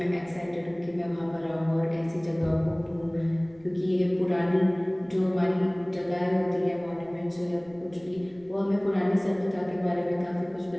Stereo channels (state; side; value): noise; right; rumble, 27 dB below the sound